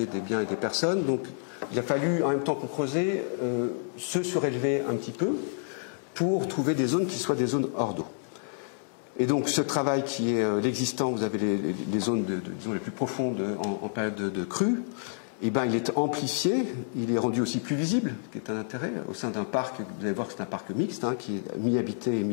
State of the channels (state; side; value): silent; right; 59 dB below the other